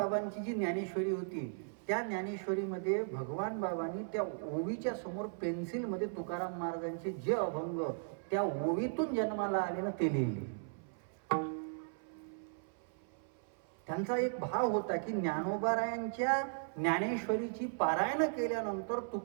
जी ज्ञानेश्वरी होती, त्या ज्ञानेश्वरीमध्ये भगवान बाबांनी त्या ओवीच्या समोर पेन्सिलमध्ये तुकाराम महाराजांचे जे अभंग त्या ओवीतून जन्माला आले ना, ते लिहिले. त्यांचा एक भाव होता की ज्ञानोबारायांच्या ज्ञानेश्वरीची पारायण केल्यानंतर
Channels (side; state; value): left; silent; 53 dB below the other